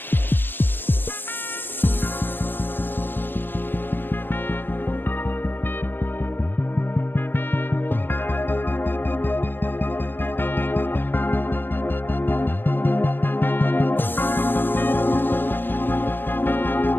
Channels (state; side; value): late; right; 0.097 ms